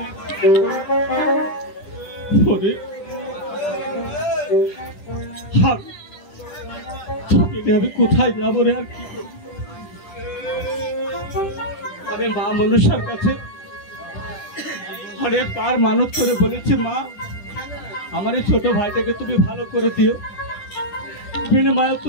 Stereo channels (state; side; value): late; right; 10 ms